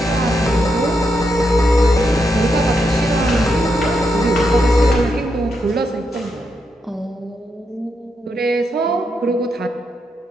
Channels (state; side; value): normal; both; correlation 0.82